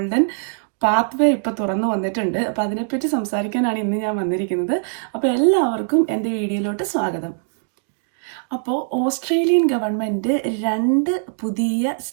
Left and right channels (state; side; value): silent; left; digital silence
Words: പാത്വേ ഇപ്പോൾ തുറന്നു വന്നിട്ടുണ്ട്. അപ്പോൾ അതിനെപ്പറ്റി സംസാരിക്കാനാണ് ഇന്ന് ഞാൻ വന്നിരിക്കുന്നത്. അപ്പോൾ എല്ലാവർക്കും എൻ്റെ വീഡിയോയിലോട്ട് സ്വാഗതം. അപ്പോൾ ഓസ്ട്രേലിയൻ ഗവൺമെൻറ് 2 പുതിയ